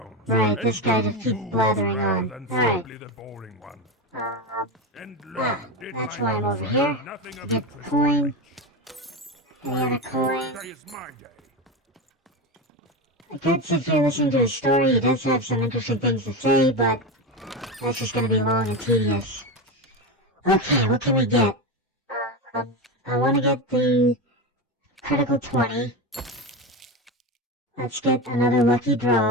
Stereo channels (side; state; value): both; normal; correlation 0.18